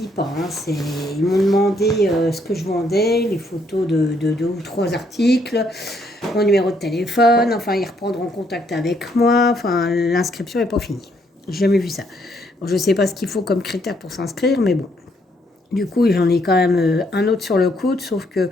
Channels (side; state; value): both; normal; correlation 0.71